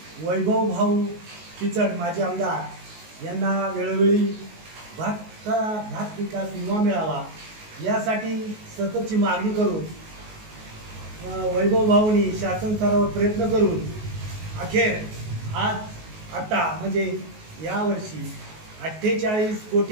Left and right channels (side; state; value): left; late; 19 ms